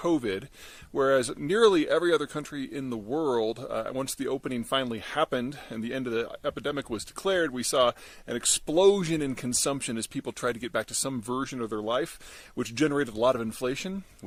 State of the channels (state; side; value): identical; both; correlation 1.00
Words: whereas nearly every other country in the world, once the opening finally happened and the end of the epidemic was declared, we saw an explosion in consumption as people tried to get back to some version of their life, which generated a lot of inflation.